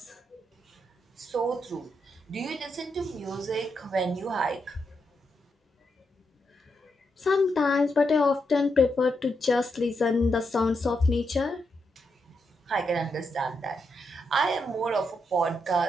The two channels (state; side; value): normal; both; correlation 0.83